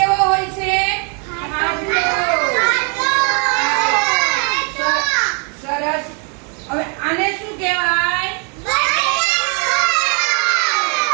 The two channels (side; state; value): left; quieter; 37.8 dB